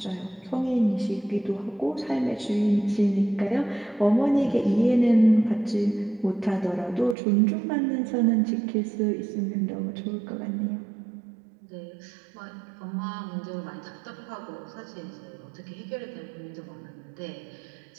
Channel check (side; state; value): left; drops out; at 7.2 s